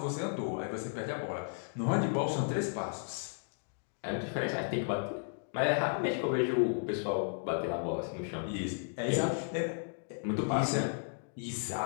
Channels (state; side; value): silent; right; digital silence